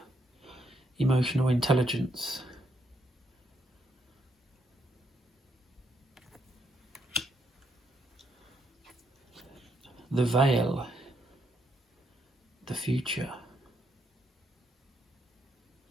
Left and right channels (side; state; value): both; normal; correlation 0.76